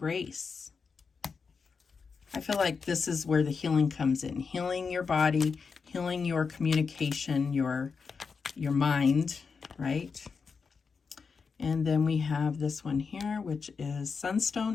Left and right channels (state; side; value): quieter; right; 5.3 dB